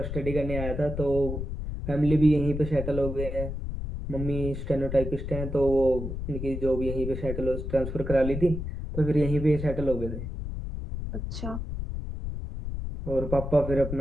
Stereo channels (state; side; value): noise; left; rumble, 5 dB below the sound